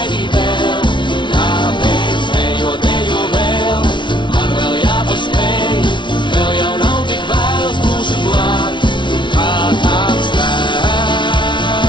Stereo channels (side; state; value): right; late; 0.23 ms